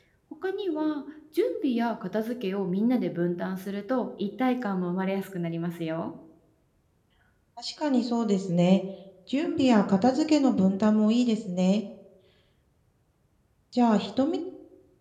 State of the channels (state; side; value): identical; both; correlation 1.00